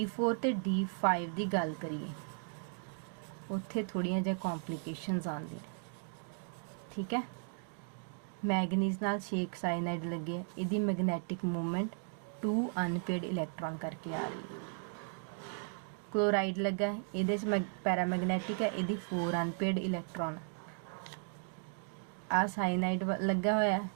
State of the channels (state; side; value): silent; left; 54 dB below the other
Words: ਤੇ D5 ਦੀ ਗੱਲ ਕਰੀਏ, ਉੱਥੇ ਥੋੜੀਆਂ ਜਿਹਾ ਕੰਪਲਿਕੇਸ਼ਨਸ ਆਉਂਦੀਆਂ, ਠੀਕ ਹੈ। ਮੈਗਨੀਜ਼ ਨਾਲ 6 ਸਾਇਨਾਈਡ ਲੱਗੇ, ਇਹਦੀ ਮੈਗਨੈਟਿਕ ਮੂਵਮੈਂਟ 2 ਅਨਪੇਅਰਡ ਇਲੈਕਟ੍ਰੋਨ ਕਰਕੇ ਆ ਰਹੀ ਹੈ। क्लोराइड लगा है, ये पैरामैग्नेटिक है, ये 4 अनपेयर्ड इलैक्ट्रॉन। आ साइनाइड लगा हुआ है,